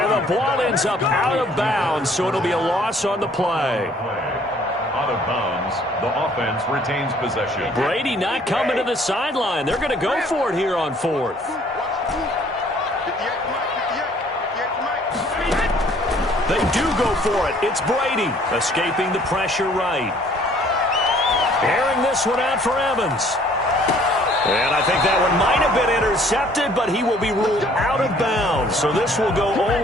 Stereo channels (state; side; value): normal; both; correlation 0.58